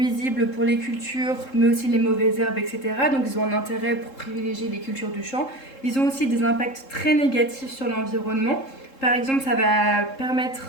pour les cultures, mais aussi les mauvaises herbes, etc. Donc ils ont un intérêt pour privilégier les cultures du champ. Ils ont aussi des impacts très négatifs sur l'environnement. Par exemple, ça va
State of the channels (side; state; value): right; late; 3.7 ms